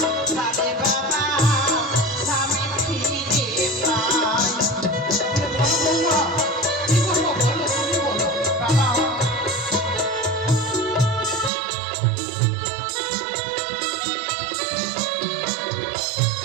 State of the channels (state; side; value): drops out; left; at 11.5 s